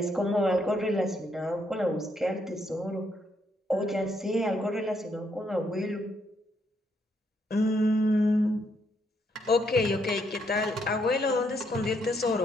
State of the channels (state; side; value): normal; both; correlation 0.74